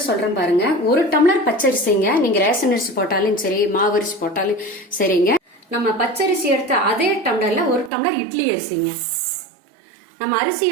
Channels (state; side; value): drops out; left; at 7.9 s